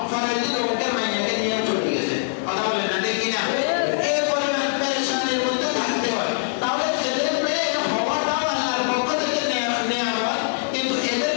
পরের দিন অমুকের মাইয়াকে নিয়ে চলে গেছে। কথা বলেন না ঠিক কিনা? এই পরিমাণ পেরেশানির মধ্যে থাকতে হয়। তাহলে ছেলে মেয়ে হওয়াটাও আল্লাহর পক্ষ থেকে নেয়ামত, কিন্তু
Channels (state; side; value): silent; right; digital silence